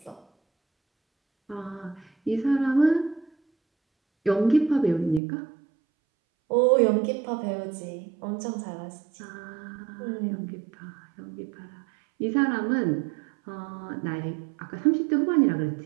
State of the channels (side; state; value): left; drops out; at 5.2 s